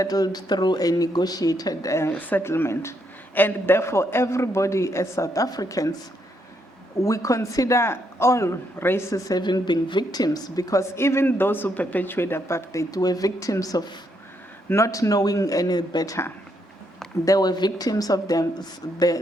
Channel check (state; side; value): normal; both; correlation 0.76